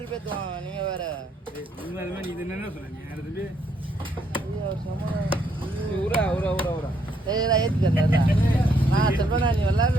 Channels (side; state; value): both; normal; correlation 0.72